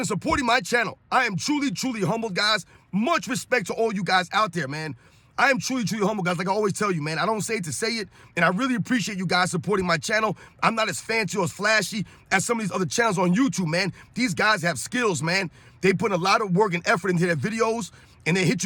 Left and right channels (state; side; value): identical; both; correlation 1.00